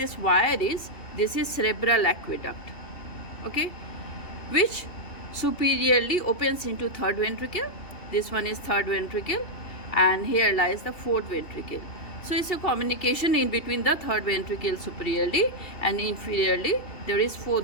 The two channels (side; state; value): right; late; 2.7 ms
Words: wire is, this is cerebral aqueduct. Okay, which superiorly opens into third ventricle. This one is third ventricle, and here lies the fourth ventricle. So it's a communication in between the third ventricle superiorly, and inferiorly there is